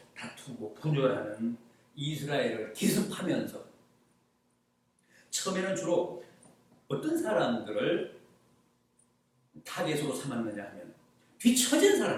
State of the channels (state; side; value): identical; both; correlation 1.00